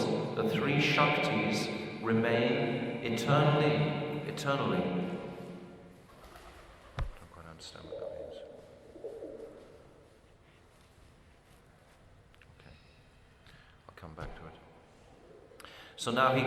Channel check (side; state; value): both; identical; correlation 1.00